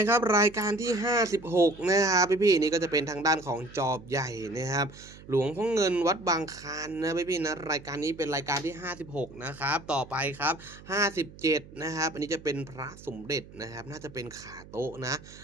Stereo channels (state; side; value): noise; right; hum, 19 dB below the sound